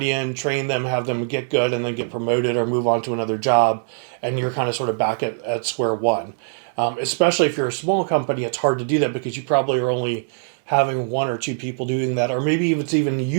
in, train them, have them get good, and then get promoted or move on to another job, and you're kind of sort of back at square one. Especially if you're a small company, it's hard to do that because you probably are only having one or two people doing that, or maybe it's even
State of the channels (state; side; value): silent; left; 64 dB below the other